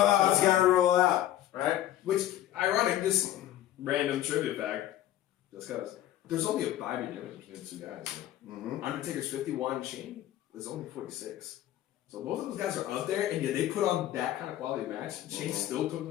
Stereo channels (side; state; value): right; quieter; 13.1 dB